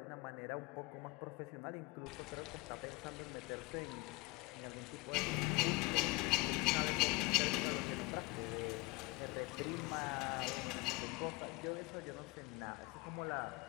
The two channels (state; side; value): quieter; right; 23.1 dB